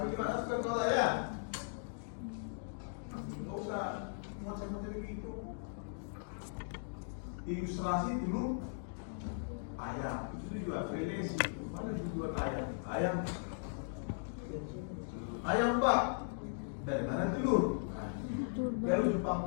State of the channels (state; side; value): silent; right; digital silence